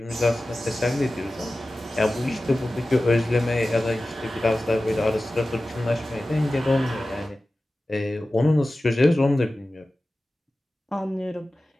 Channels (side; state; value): both; normal; correlation 0.95